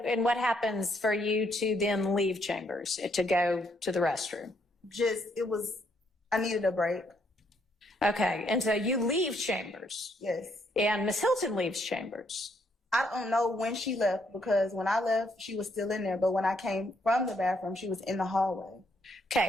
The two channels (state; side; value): normal; both; correlation 0.72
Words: what happens for you to then leave chambers to go to the restroom? I needed a break. Okay, and so you leave chambers. Yes. And Miss Hilton leaves chambers. I don't know when she left, because when I left, she was still in there. But when I came from the bathroom, she was in the hallway.